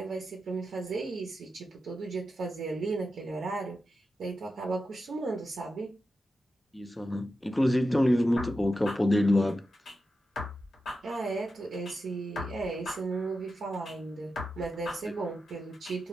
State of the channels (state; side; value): normal; both; correlation 0.90